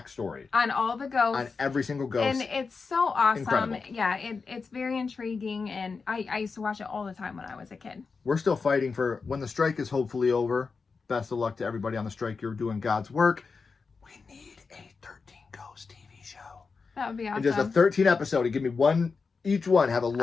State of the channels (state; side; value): quieter; right; 4.8 dB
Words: On all the ghosts. on every single ghost. And it's so awesome. Incredible. Yeah, it's very intriguing, and I used to watch it all the time when I was a kid. We're still fighting for when the strike is hopefully over. Best of luck to everybody on the strike. You're doing God's work. We need a 13 Ghost TV show. That would be awesome. And just a 13 episode. Give me one, each one have a